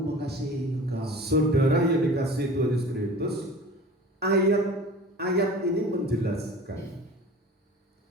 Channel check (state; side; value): normal; both; correlation 0.40